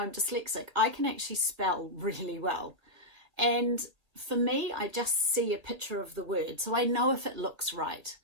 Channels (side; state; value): left; late; 1.8 ms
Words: dyslexic, I can actually spell really well. And for me, I just see a picture of the word, so I know if it looks right.